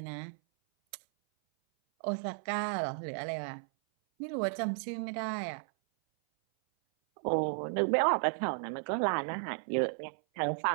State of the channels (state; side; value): silent; left; 55 dB below the other